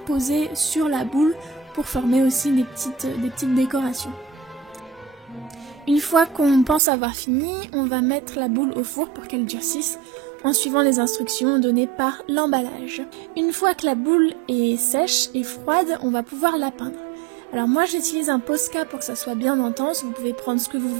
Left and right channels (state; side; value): drops out; left; at 6.8 s